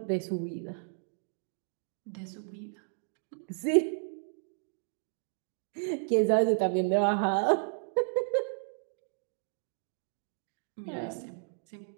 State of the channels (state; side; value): silent; left; digital silence